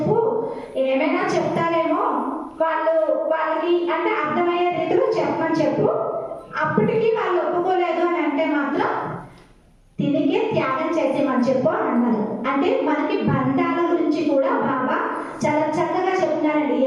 ఏమైనా చెప్తారేమో, వాళ్ళకి అంటే అర్థమయ్యే రీతిలో చెప్పమని చెప్పు. అప్పటికి వాళ్ళు ఒప్పుకోలేదు అని అంటే మాత్రం తిరిగే త్యాగం చేసేమని చెప్పు అని అన్నారు. అంటే మనకి బంధాల గురించి కూడా బాబా చాలా చక్కగా చెప్తున్నారండి.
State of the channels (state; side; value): identical; both; correlation 1.00